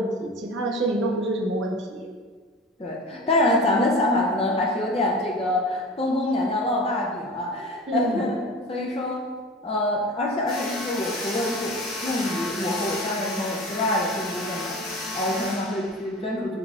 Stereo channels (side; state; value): both; normal; correlation 0.34